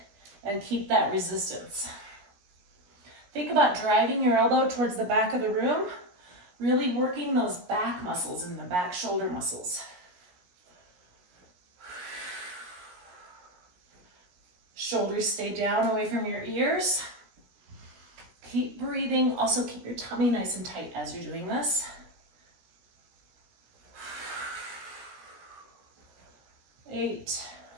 and keep that resistance. Think about driving your elbow towards the back of the room, really working those back muscles and the back shoulder muscles. Shoulders stay down away from your ears. Keep breathing. Also keep your tummy nice and tight as you're doing this. 8,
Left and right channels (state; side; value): late; left; 17 ms